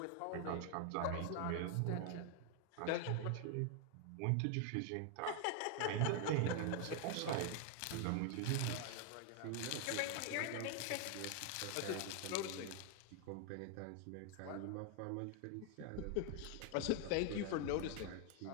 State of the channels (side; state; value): both; different; correlation 0.00